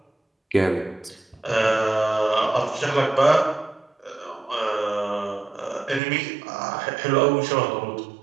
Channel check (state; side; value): drops out; left; at 6.0 s